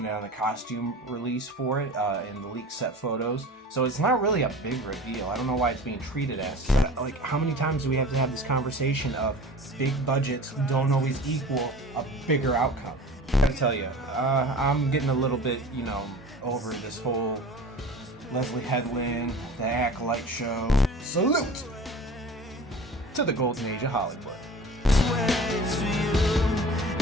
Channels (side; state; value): both; normal; correlation 0.39